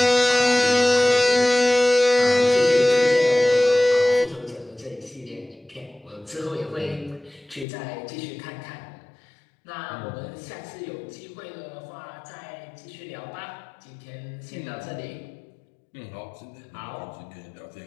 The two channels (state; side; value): drops out; right; at 7.7 s